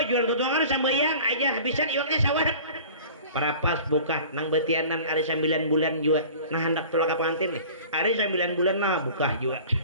jual tutuangan sambayang aja habisan iwaknya sawah parapas buka nang betianan ada 9 bulan juga nah hendak tolak ke pengantin nih ada 9 bulan nah buka juga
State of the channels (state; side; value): inverted; both; correlation -0.43